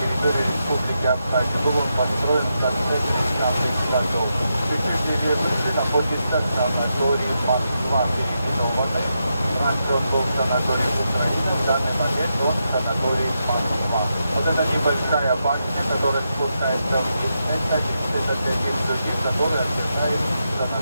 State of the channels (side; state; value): both; inverted; correlation -0.85